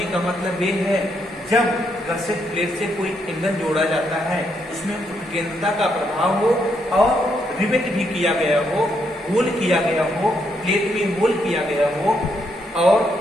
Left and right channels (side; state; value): both; normal; correlation 0.77